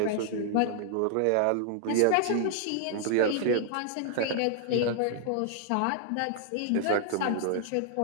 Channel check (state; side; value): different; both; correlation 0.00